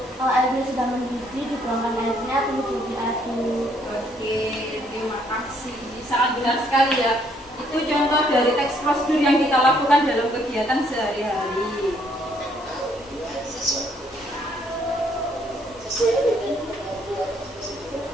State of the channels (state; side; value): normal; both; correlation 0.67